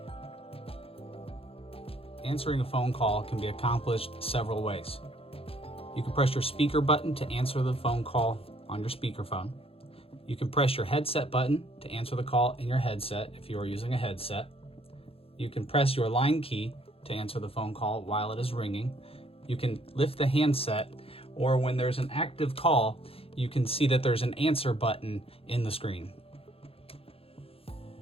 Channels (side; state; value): right; late; 0.27 ms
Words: Answering a phone call can be accomplished several ways. You can press your speaker button to answer the phone call on your speakerphone. You can press your headset button to answer the call in your headset if you are using a headset. You can press your line key to answer the phone call while it is ringing. You can lift the handset, or when there's an active call, you can see that there's an answer button in the screen.